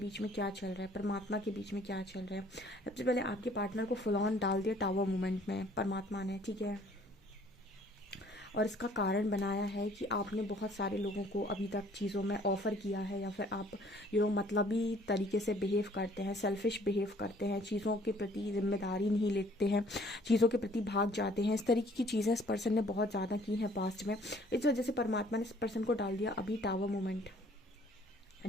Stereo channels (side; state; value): both; normal; correlation 0.58